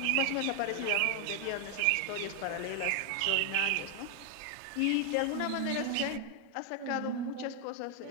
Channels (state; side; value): different; both; correlation 0.00